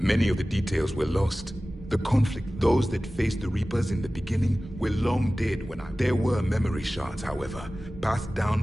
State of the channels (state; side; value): normal; both; correlation 0.97